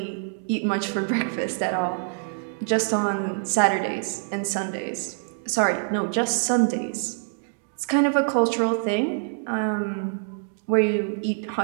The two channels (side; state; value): left; silent; digital silence